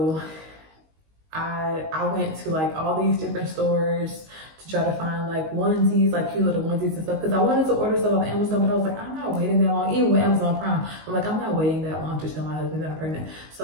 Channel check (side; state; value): left; late; 19 ms